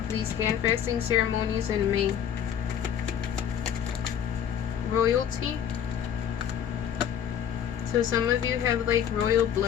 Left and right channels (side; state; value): right; quieter; 9.1 dB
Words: these hand fasting ceremonies in May. Royalty. So some of you have like royal